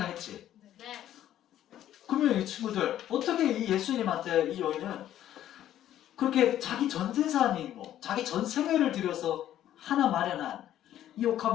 네. 그러면 이 친구들 어떻게 이 예수님한테 이 여인은 그렇게 자기 전 재산이고 자기 전 생애를 들여서 하나 마련한 이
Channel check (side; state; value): right; quieter; 11.9 dB